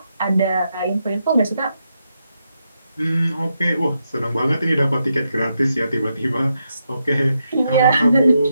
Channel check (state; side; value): inverted; both; correlation -0.83